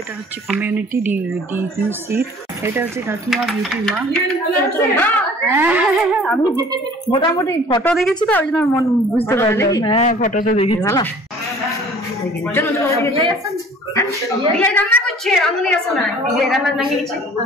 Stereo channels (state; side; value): normal; both; correlation 0.50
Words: এটা হচ্ছে কমিউনিটি ডিভিসির, এটা হচ্ছে কাকিমা বিউটি মা। আমি মোটামুটি ফটো দেখেছি তো ওই জন্য মন বুঝতে পারলাম। হ্যাঁ ফটোতে দেখেছি। ভালো রান্না করছে, রান্না আসে না, রান্না লাগিয়েছে